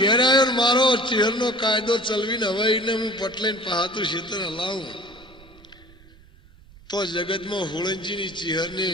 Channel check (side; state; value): right; noise; rumble, 24 dB below the sound